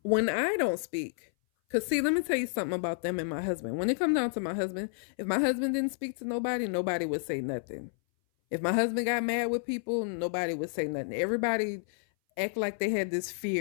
when I don't speak, because see, let me tell you something about them and my husband. When it comes down to my husband, if my husband didn't speak to nobody, nobody would say nothing. If my husband got mad with people, nobody would say nothing. Everybody act like they had this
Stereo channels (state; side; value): silent; right; 58 dB below the other